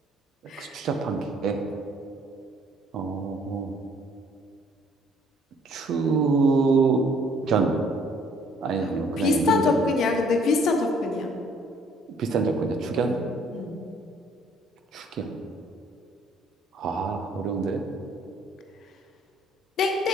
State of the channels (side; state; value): both; normal; correlation 0.61